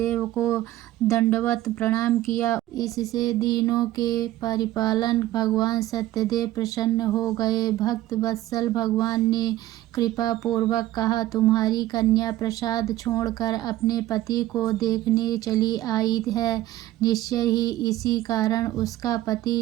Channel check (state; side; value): quieter; left; 15.0 dB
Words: को दंडवत प्रणाम किया। इससे दीनों के परिपालन भगवान सत्यदेव प्रसन्न हो गए। भक्त वत्सल भगवान ने कृपा पूर्वक कहा, तुम्हारी कन्या प्रसाद छोड़कर अपने पति को देखने चली आई है। निश्चय ही इसी कारण उसका